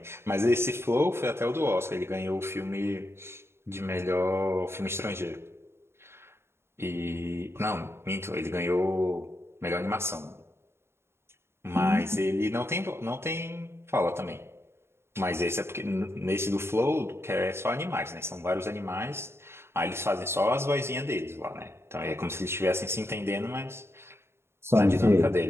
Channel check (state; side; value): late; left; 0.12 ms